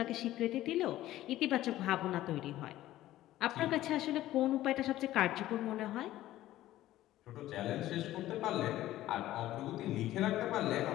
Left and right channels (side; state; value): right; quieter; 14.7 dB